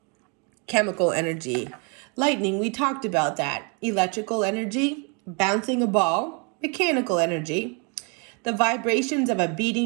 Chemical energy. Lightning, we talked about that. Electrical energy. Bouncing a ball. Mechanical energy. The vibrations of a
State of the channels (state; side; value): quieter; left; 33.5 dB